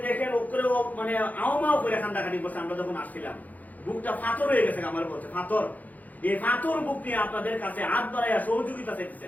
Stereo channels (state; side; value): late; right; 0.080 ms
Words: দেখেন ওপরে মানে আওমাও করে কান্দাকাটি করছে। আমরা যখন আসছিলাম বুকটা ফাতর হয়ে গেছে, আমার বলছে ফাতর। এই ফাতর বুক নিয়ে আপনাদের কাছে হাত বাড়াইয়া সহযোগিতা